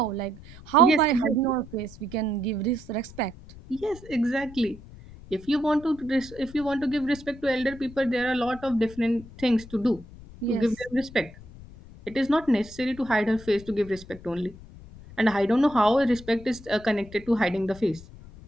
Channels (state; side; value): noise; left; rumble, 18 dB below the sound